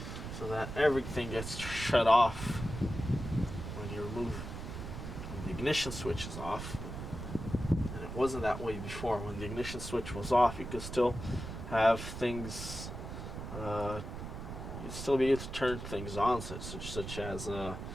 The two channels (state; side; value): noise; right; rumble, 8 dB below the sound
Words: so that everything gets shut off when you remove, when the ignition switch is off. And it wasn't that way before. When the ignition switch was off, you could still have things, you'd still be able to turn things on, such as